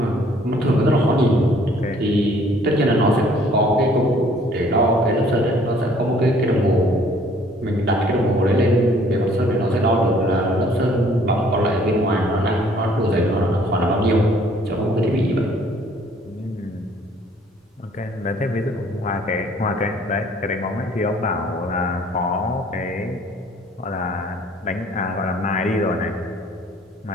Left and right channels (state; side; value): normal; both; correlation 0.58